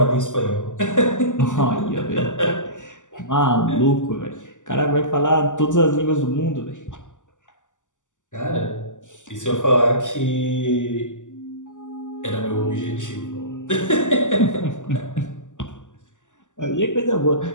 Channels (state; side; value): late; right; 0.86 ms